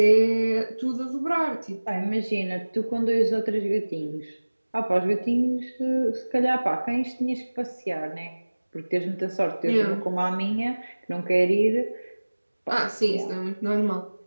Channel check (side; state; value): both; inverted; correlation -1.00